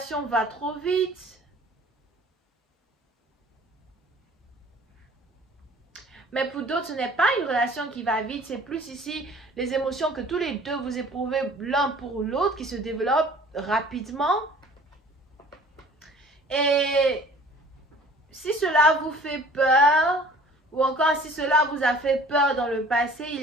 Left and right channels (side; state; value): both; normal; correlation 0.50